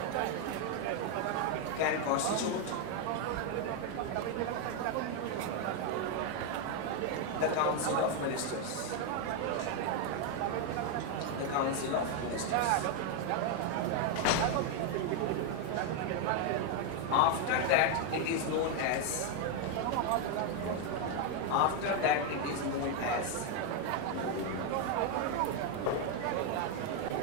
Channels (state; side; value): different; both; correlation 0.01